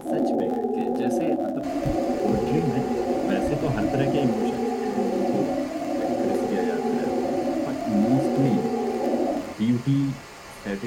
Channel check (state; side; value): identical; both; correlation 1.00